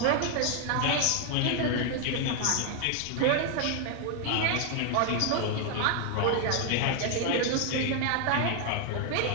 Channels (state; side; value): different; both; correlation 0.00